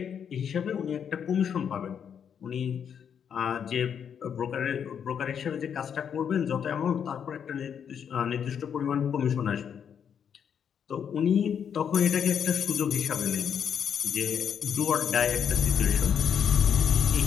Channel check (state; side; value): quieter; right; 7.9 dB